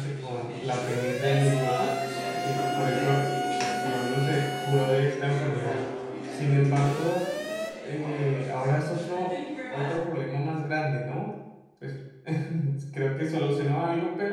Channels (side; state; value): both; identical; correlation 1.00